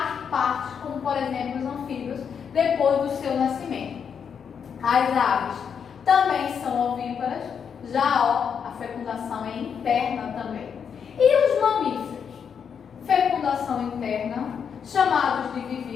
partes, como por exemplo os anfíbios, depois do seu nascimento. As aves também são ovíparas, já a fecundação é interna também. E os mamíferos? Fecundação interna, chamados de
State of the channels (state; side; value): quieter; right; 7.1 dB